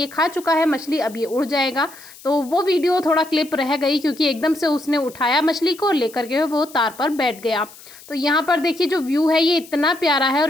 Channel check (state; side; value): noise; left; hiss, 20 dB below the sound